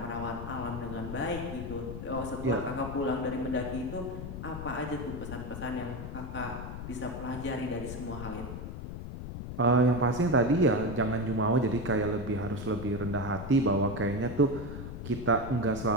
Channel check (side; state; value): left; noise; rumble, 8 dB below the sound